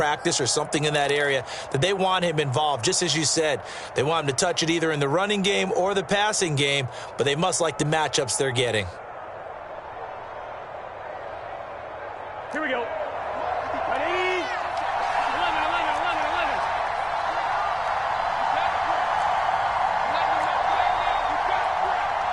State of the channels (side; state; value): both; identical; correlation 1.00